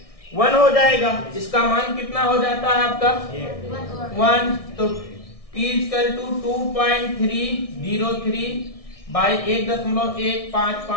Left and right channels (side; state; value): right; late; 1.6 ms